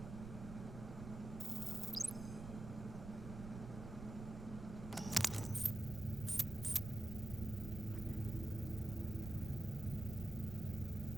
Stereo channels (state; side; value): noise; right; rumble, 9 dB below the sound